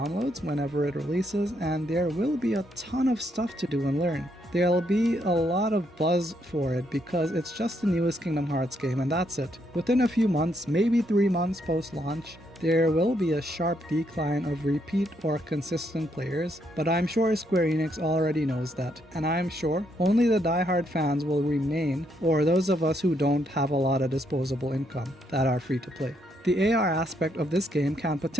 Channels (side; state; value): both; normal; correlation 0.75